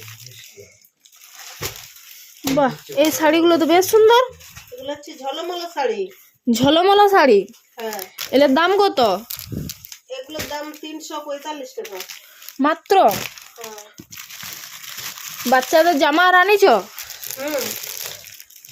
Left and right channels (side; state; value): both; identical; correlation 1.00